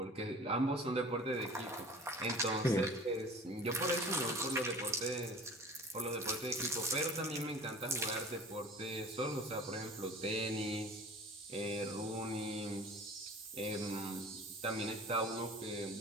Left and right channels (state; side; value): normal; both; correlation 0.42